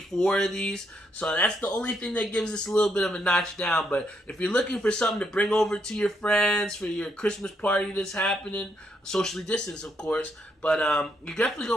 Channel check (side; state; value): both; normal; correlation 0.76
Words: of these. So that's the only thing that gives us a little bit of a notch down. But if you're looking for something to bring over to your friends for your Christmas party that's happening, socially distanced, of course, but you're definitely going